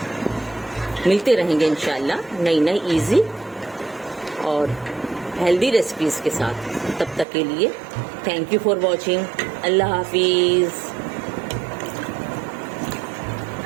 मिलते रहेंगे इंशाल्लाह नई नई इजी और हेल्दी रेसिपीज़ के साथ। तब तक के लिए थैंक यू फॉर वॉचिंग। अल्लाह हाफिज़।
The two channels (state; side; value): drops out; left; at 7.2 s